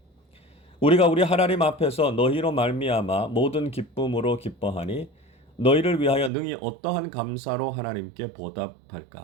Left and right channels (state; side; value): drops out; left; at 6.3 s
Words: 우리가 우리 하나님 앞에서 너희로 말미암아 모든 기쁨으로 기뻐하니 너희를 위하여 능히 어떠한 감사로 하나님께